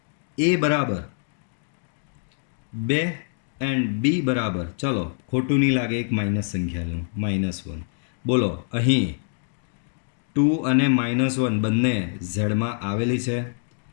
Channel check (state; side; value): silent; right; digital silence